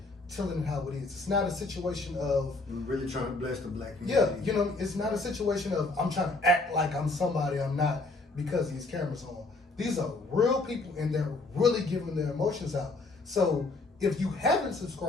telling it how it is. It's not a situation of, We're really trying to bless the black community. yeah, it's not a situation of I'm trying to act like I'm somebody I'm not because these cameras are on. These are real people and they're really giving their emotions out. So if you haven't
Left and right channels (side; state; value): right; quieter; 3.3 dB